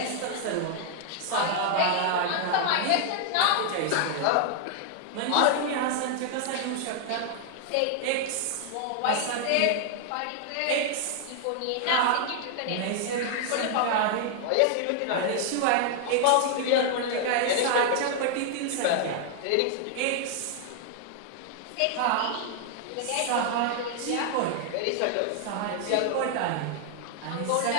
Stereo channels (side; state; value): both; different; correlation 0.00